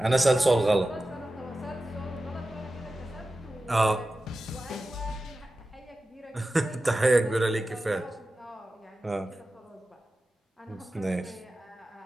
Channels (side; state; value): both; normal; correlation 0.94